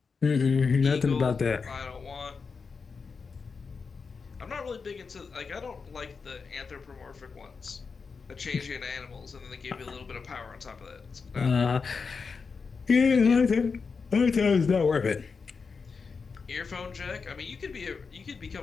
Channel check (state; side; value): quieter; right; 5.1 dB